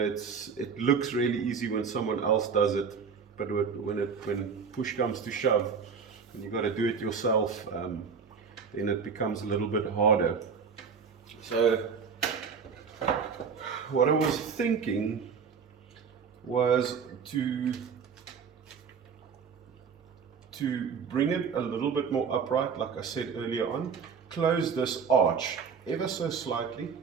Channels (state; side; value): quieter; left; 6.0 dB